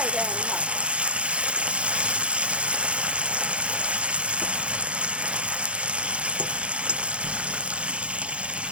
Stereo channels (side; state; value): left; late; 0.060 ms